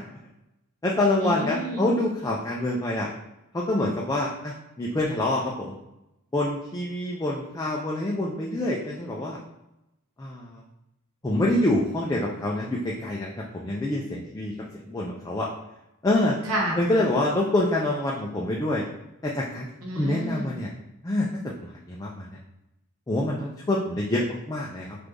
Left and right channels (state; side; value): normal; both; correlation 0.55